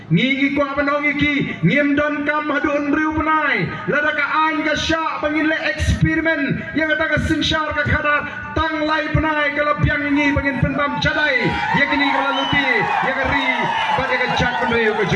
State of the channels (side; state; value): both; identical; correlation 1.00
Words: ngigi ko abanong iki ngim don kam hadun riu penai lada ka an ka sya bangin le eksperimen yang kata ka sencar ka khadar tang lai penai kalau biang ini bangin pentam cadai ya kini kalau luti ya kari bagi ka jak penriu ka